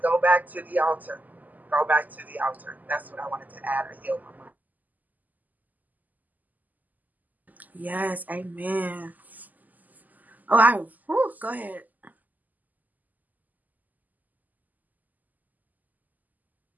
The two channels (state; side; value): late; left; 0.082 ms